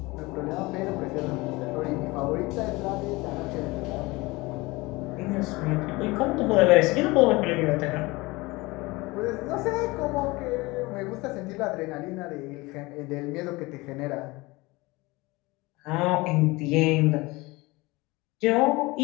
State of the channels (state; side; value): quieter; right; 22.6 dB